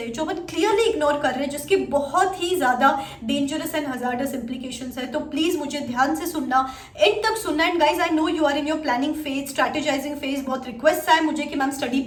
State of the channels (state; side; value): identical; both; correlation 1.00